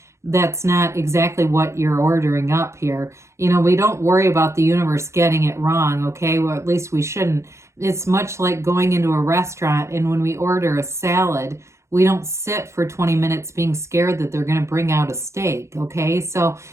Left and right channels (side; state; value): left; late; 0.14 ms